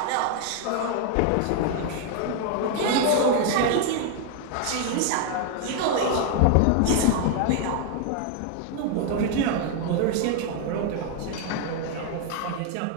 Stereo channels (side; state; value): both; different; correlation 0.00